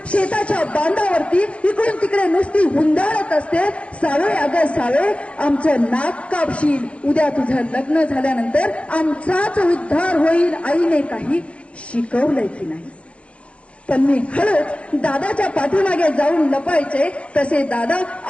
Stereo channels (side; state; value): right; late; 0.060 ms